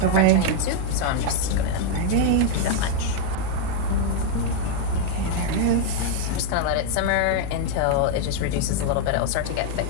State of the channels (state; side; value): different; both; correlation 0.00